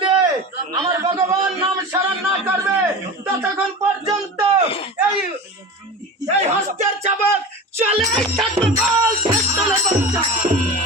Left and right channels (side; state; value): both; normal; correlation 0.31